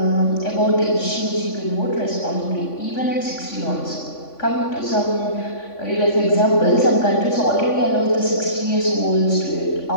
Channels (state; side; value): late; right; 3.5 ms